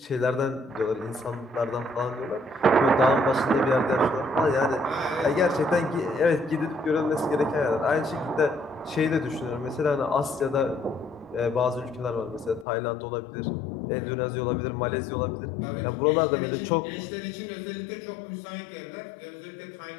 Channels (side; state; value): right; drops out; at 12.7 s